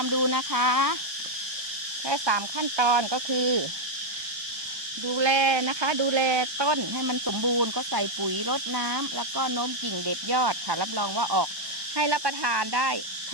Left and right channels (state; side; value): late; left; 1.2 ms